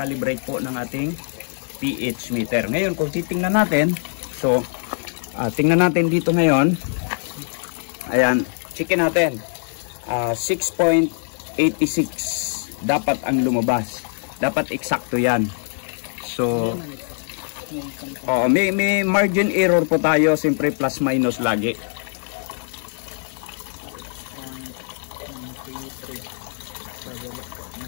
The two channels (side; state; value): right; silent; 63 dB below the other